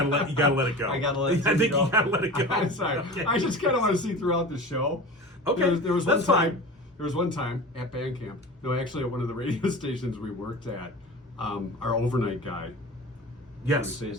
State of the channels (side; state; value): both; normal; correlation 0.34